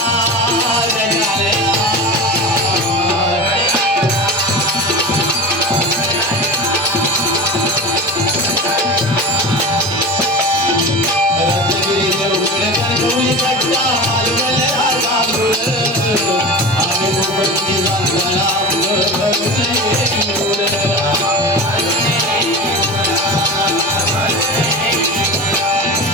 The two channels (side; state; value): both; normal; correlation 0.29